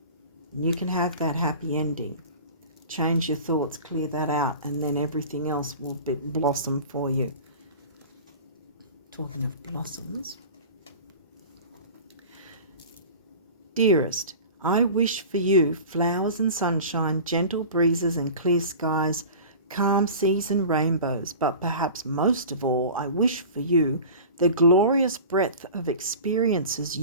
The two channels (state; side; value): inverted; both; correlation -0.38